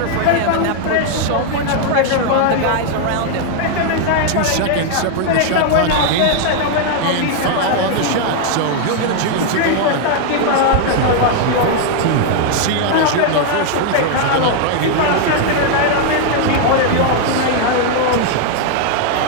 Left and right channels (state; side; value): different; both; correlation 0.00